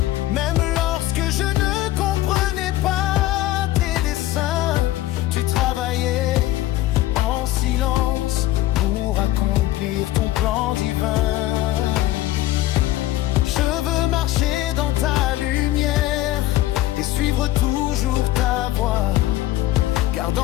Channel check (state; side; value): quieter; right; 15.3 dB